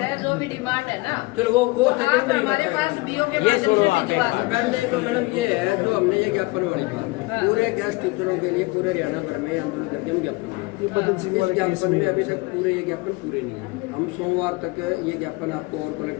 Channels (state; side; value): quieter; right; 23.8 dB